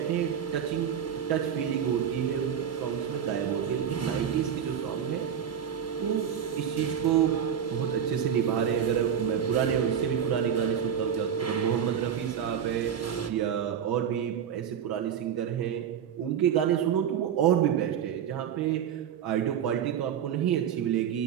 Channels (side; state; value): left; quieter; 8.5 dB